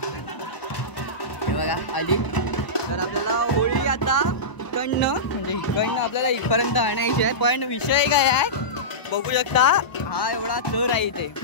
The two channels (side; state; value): right; late; 1.0 ms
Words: हे बघा आली तर आपल्याला होळी आता इकडनं म्हणजे इकडनं आपल्याला इथपर्यंत आणायची आहे पण विषय काय आहे बघू शकता हा एवढा चर आहे इथे